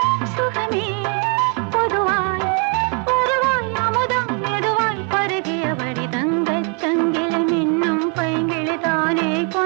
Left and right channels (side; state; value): left; quieter; 37.8 dB